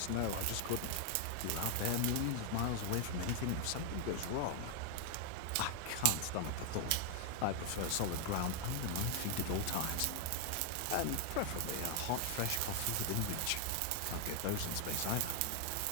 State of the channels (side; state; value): both; different; correlation 0.00